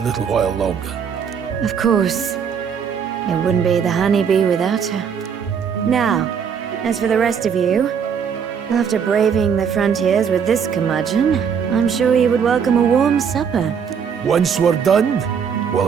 while longer? Of course. It wouldn't be the Honeybee without her. Now, as for the rest of you, after braving the frontiers with this curmudgeon, I'm sure you would welcome a warm supper. Once we're done, we'll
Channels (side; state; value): left; quieter; 7.1 dB